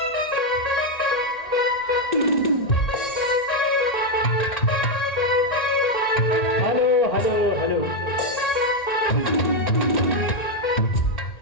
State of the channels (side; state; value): right; late; 1.8 ms